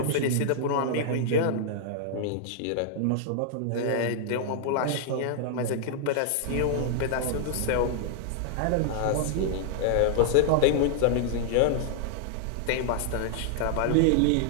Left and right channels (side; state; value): both; different; correlation -0.01